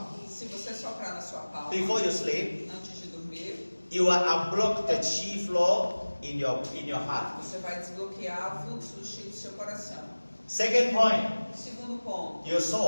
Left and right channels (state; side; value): inverted; both; correlation -1.00